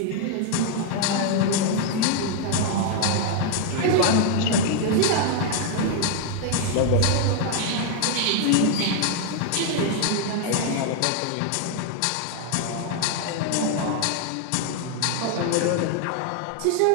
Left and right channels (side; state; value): both; different; correlation 0.00